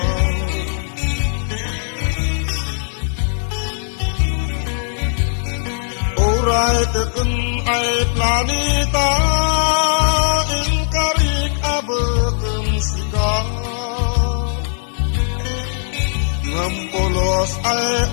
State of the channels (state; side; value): silent; right; 64 dB below the other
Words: Oray tekun ay planeta inkarik abekem sika. Ngampolos ay